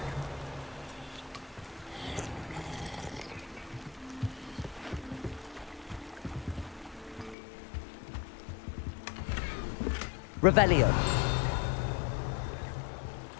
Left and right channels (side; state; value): right; drops out; at 7.4 s